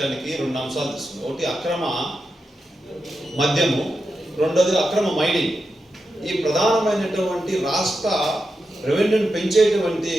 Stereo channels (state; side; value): normal; both; correlation 0.88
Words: 2 అంశాలు తీసుకున్నారు. ఒకటి అక్రమ మద్యము, రెండోది అక్రమ మైనింగ్. ఈ ప్రధానమైనటువంటి రాష్ట్ర రెవెన్యూని పెంచేటువంటి